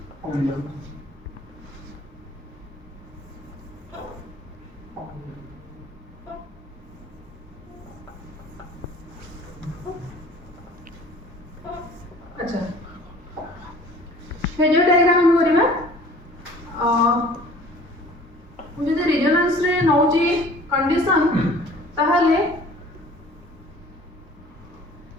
अच्छा फेजर डायग्राम हम करिबा जदि रिजोनेंस रे नौची कंडीशन ताहले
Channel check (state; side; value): normal; both; correlation 0.49